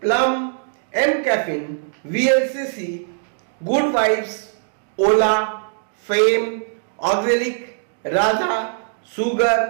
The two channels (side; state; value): left; silent; digital silence